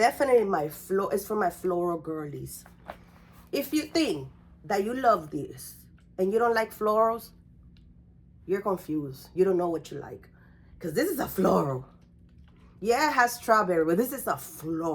it's for my floral girlies. If you think that you love this and you don't like florals, you're confused. You don't know what you like. Because this is a floral. Yeah, it has strawberry, but this is a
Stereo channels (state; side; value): identical; both; correlation 1.00